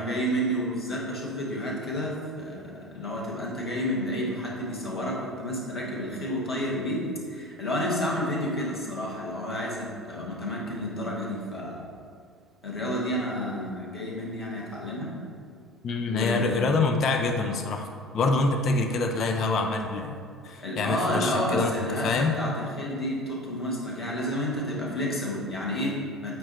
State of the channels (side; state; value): both; normal; correlation 0.38